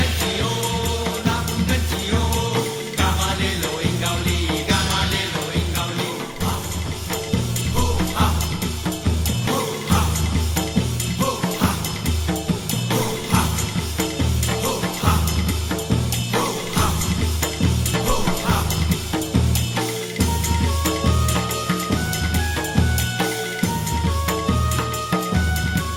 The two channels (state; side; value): identical; both; correlation 1.00